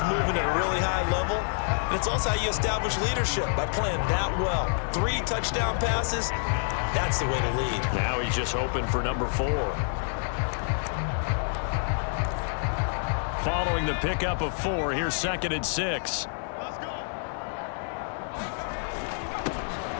moving at a really high level. And it's also how you establish leadership, by playing that well. 3 touchdown passes. That's the way to lead. Now he's just hoping for number 4. Following the pickup of 4, here's 2nd and 6. Let's go.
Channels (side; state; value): right; silent; digital silence